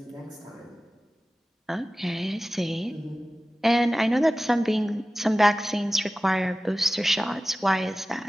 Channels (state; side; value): normal; both; correlation 0.96